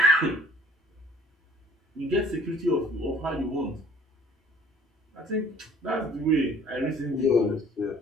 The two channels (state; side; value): normal; both; correlation 0.55